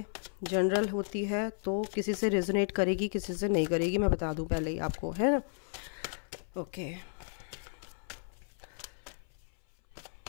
जनरल होती है तो किसी से रेजोनेट करेगी, किसी से नहीं करेगी, मैं बता दूं पहले ही आपको, है ना। ओके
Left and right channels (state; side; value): silent; right; 55 dB below the other